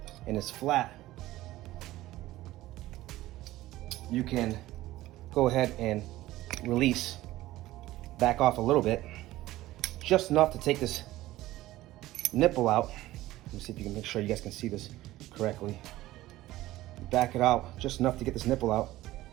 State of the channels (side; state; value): left; quieter; 16.4 dB